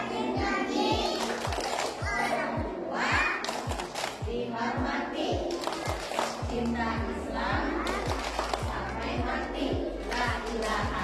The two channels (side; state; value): both; identical; correlation 1.00